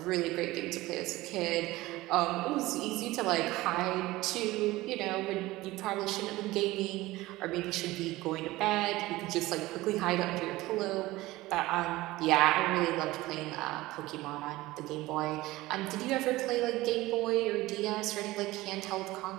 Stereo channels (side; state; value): left; quieter; 18.7 dB